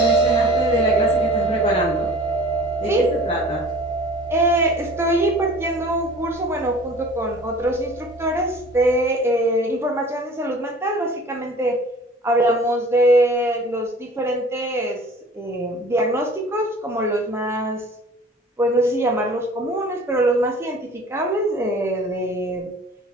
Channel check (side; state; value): both; normal; correlation 0.45